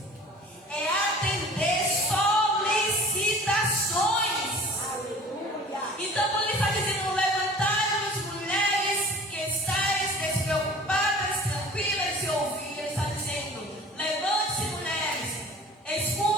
É atender solicitações. Então, quando ele está dizendo: levantai-vos, mulheres, que estáis despreocupadas, tranquilas, e ouvir, ele está dizendo: levante-se, mulheres,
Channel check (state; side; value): normal; both; correlation 0.45